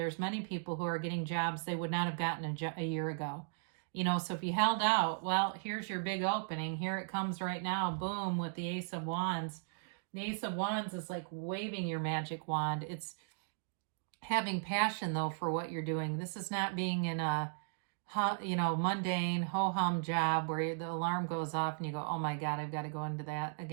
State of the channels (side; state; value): left; silent; digital silence